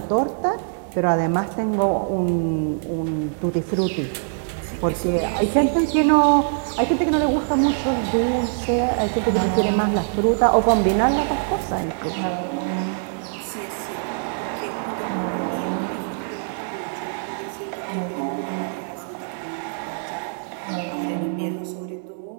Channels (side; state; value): left; silent; digital silence